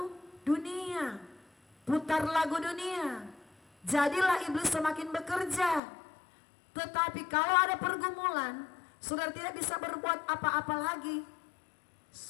dunia, putar lagu dunia. Jadilah iblis semakin bekerja. Tetapi kalau ada pergumulan, saudara tidak bisa berbuat apa-apa lagi.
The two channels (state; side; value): drops out; right; at 5.8 s